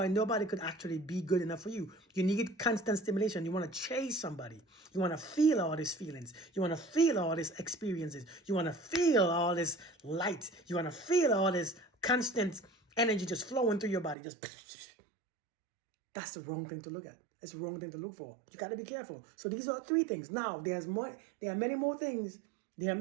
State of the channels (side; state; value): left; drops out; at 14.2 s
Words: nobody could actually be good enough for you. You need constant stimulation. You want to chase somebody. You want to feel all these feelings. You want to feel all these experiences. You want to feel all this light. You want to feel all this constant energy just flowing through your body. That's the wrong thing to look at. It's the wrong thing to look for. You got to be careful. So these are 3 things. Now, there are many more things. There are